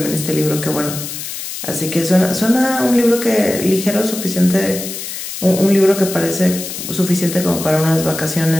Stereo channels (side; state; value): left; noise; hiss, 8 dB below the sound